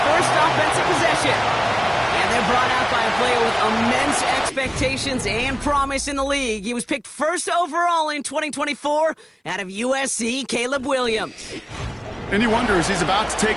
first offensive possession. And they're brought out by a player with immense expectations and promise in the league. He was picked first overall in 2024 out of USC, Caleb Williams. And you wonder, as he's about to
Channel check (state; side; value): identical; both; correlation 1.00